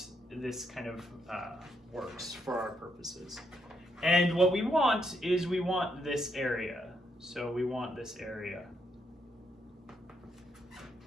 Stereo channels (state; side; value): normal; both; correlation 0.77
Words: this kind of works for our purposes. And what we want is we want this area. So we want this area.